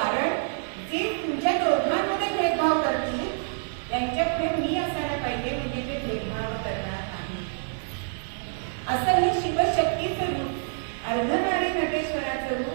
जे तुमच्या दोघांमध्ये भेदभाव करतील त्यांच्यापुढे मी असायला पाहिजे, म्हणजे ते भेदभाव करणार नाही. असं हे शिवशक्तीचं रूप अर्धनारी नटेश्वराचं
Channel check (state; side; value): silent; left; 60 dB below the other